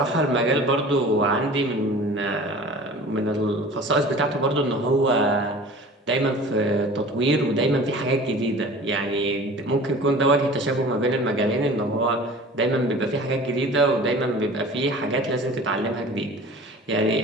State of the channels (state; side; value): normal; both; correlation 0.42